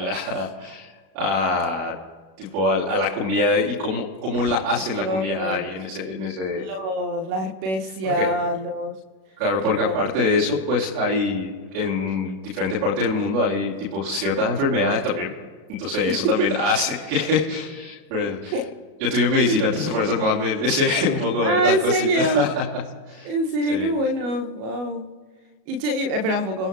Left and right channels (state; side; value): late; left; 36 ms